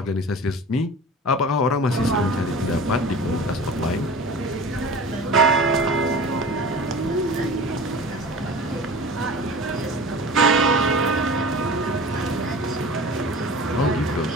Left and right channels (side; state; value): both; normal; correlation 0.37